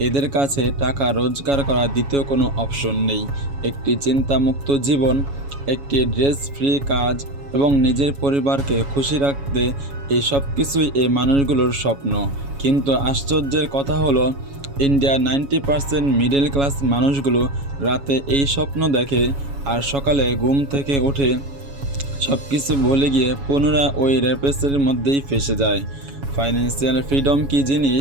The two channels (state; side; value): late; left; 7.2 ms